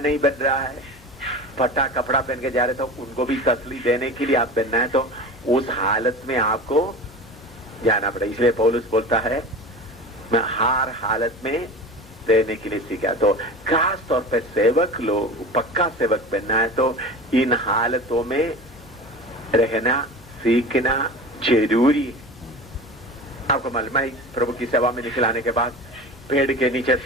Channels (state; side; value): normal; both; correlation 0.33